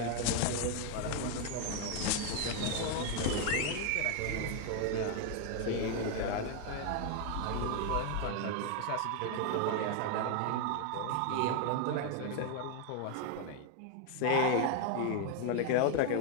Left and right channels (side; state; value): both; different; correlation 0.01